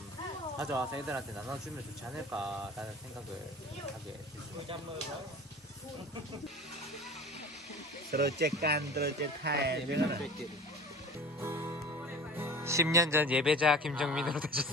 가져와서 애들한테 나눠주면 좋지 않을까라는 생각을 하게 됐습니다. Terus cekan, terus cekai. 10년 전 예배자 김정민으로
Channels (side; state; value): both; normal; correlation 0.40